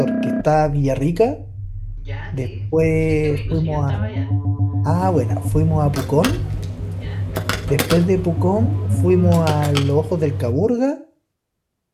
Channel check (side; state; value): both; identical; correlation 1.00